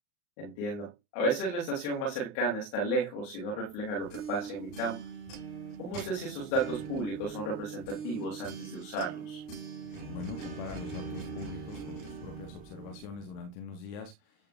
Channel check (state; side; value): late; right; 39 ms